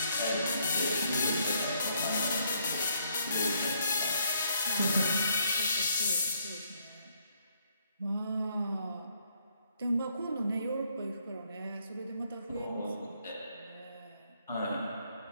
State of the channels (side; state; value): both; inverted; correlation -0.70